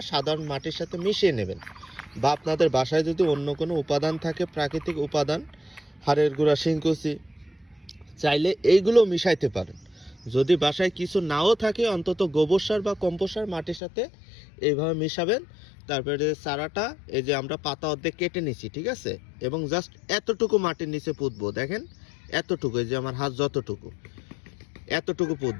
সাধারণ মাটির সাথে মিশিয়ে নেবেন, বা আপনাদের বাসায় যদি অন্য কোনো উপাদান থাকে, প্রাকৃতিক উপাদান, হাড়ের গুঁড়া, শিংকুচি, চাইলে এইগুলো মিশাইতে পারেন। যদি বাসায় কিছু নাও থাকে, অন্তত গোবর সার বা কম্পোস্ট সার মাটির সাথে এইভাবে মিশাবেন। তারপরে চারাটা এই যে আমরা পাতা অর্ধেক কেটে নিছি, ঠিক আছে, এবং জাস্ট এতটুকু মাটির নিচে পুঁতবো। দেখেন এতটুকু, এই যে আমার হাত যতটুকু, এতটুকু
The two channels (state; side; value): drops out; right; at 13.8 s